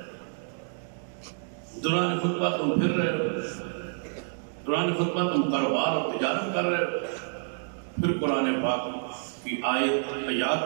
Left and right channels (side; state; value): left; silent; digital silence